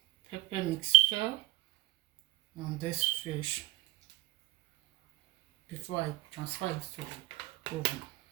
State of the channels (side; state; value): left; quieter; 16.6 dB